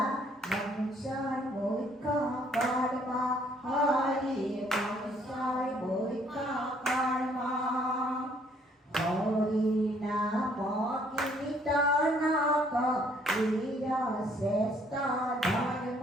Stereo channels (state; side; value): normal; both; correlation 0.64